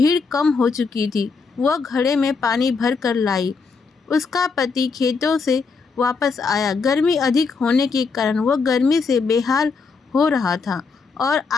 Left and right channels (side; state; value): right; quieter; 4.8 dB